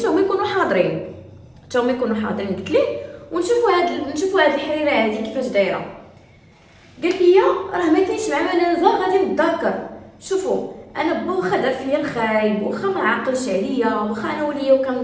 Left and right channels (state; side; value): identical; both; correlation 1.00